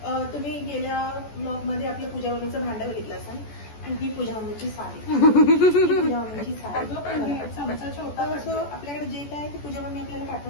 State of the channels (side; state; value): right; late; 14 ms